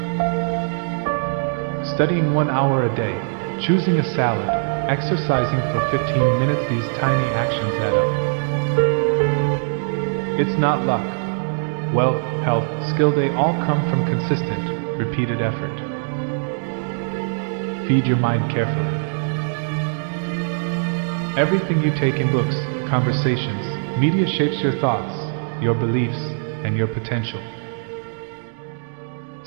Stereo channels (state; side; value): silent; left; digital silence